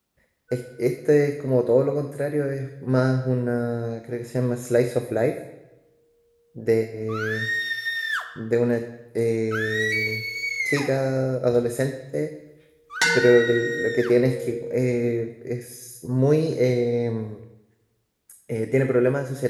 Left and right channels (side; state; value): both; identical; correlation 1.00